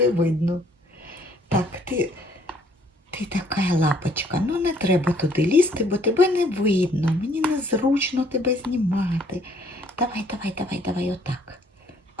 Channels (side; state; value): both; normal; correlation 0.62